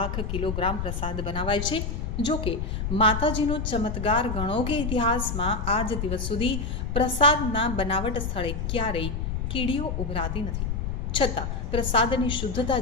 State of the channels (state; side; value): noise; left; rumble, 2 dB below the sound